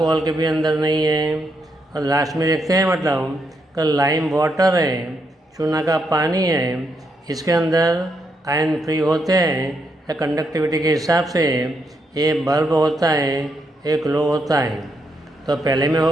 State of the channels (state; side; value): normal; both; correlation 0.79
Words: के भी अंदर नहीं है. और लास्ट में देखते हैं मतलब कि लाइम वाटर है, चूना का पानी है, इसके अंदर आयन फ्री होते हैं. या कंडक्टिविटी के हिसाब से ये बल्ब होता है, ये ग्लो होता है. तो पहले में